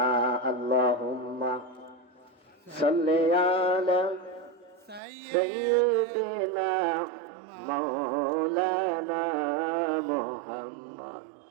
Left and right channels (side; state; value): left; drops out; at 5.0 s